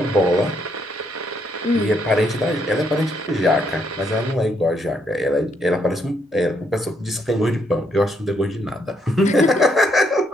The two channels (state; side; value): normal; both; correlation 0.74